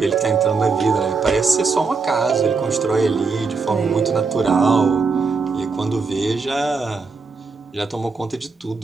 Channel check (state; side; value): quieter; left; 4.6 dB